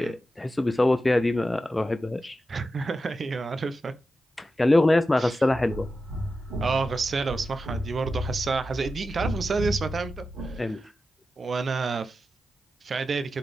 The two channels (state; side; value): normal; both; correlation 0.91